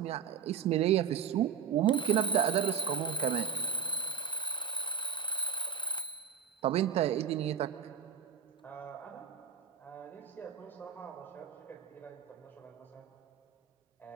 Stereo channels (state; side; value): quieter; left; 7.4 dB